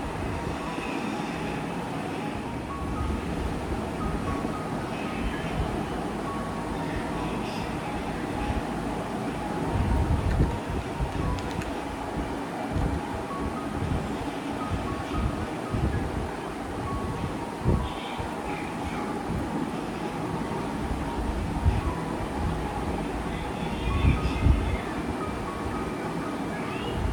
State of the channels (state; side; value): identical; both; correlation 1.00